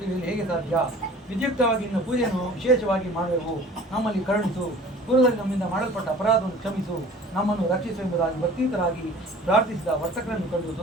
ಹೇಗೆ ಸಾಧ್ಯ? ವಿದ್ಯುಕ್ತವಾಗಿ ನಿನ್ನ ಪೂಜೆಯನ್ನು ವಿಶೇಷವಾಗಿ ಮಾಡುವೆವು. ನಮ್ಮಲ್ಲಿ ಕರುಣಿಸು, ಪೂರ್ವದಲ್ಲಿ ನಮ್ಮಿಂದ ಮಾಡಲ್ಪಟ್ಟ ಅಪರಾಧವನ್ನು ಕ್ಷಮಿಸು, ನಮ್ಮನ್ನು ರಕ್ಷಿಸು ಎಂಬುದಾಗಿ ಭಕ್ತಿಯುತರಾಗಿ ಪ್ರಾರ್ಥಿಸಿದ ವರ್ತಕರನ್ನು ಕಂಡು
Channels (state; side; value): normal; both; correlation 0.46